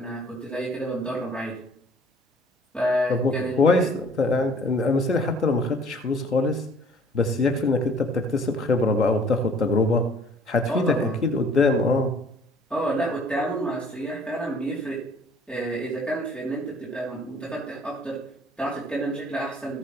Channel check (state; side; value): normal; both; correlation 0.55